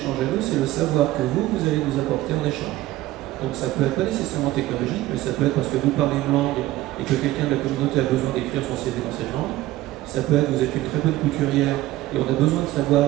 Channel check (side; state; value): left; quieter; 16.0 dB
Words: à nous, c'est le savoir que vous allez nous apporter en échange. Donc ça peut être pas nécessairement technologique, mais ça peut être parce que vous parlez une langue et que quelqu'un de la communauté a besoin d'écrire son CV dans cette langue. Ça peut être vous êtes une très bonne couturière et on a besoin de